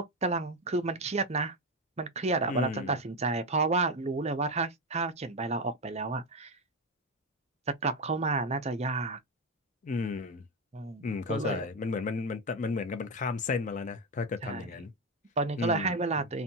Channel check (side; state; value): both; normal; correlation 0.11